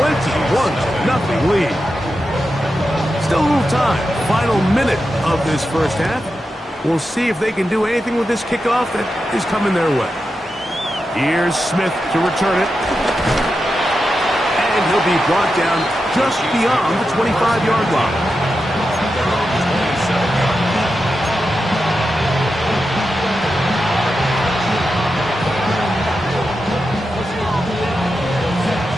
lead. Still a little time. Final minute of this first half. We'll see if they can do anything with this kickoff that is coming their way. Here's Smith to return it. And he'll be brought down just beyond the 25-yard line.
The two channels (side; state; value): both; normal; correlation 0.89